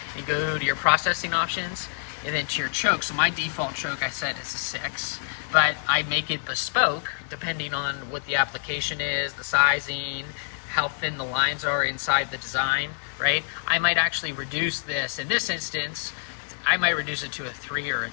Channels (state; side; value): silent; right; digital silence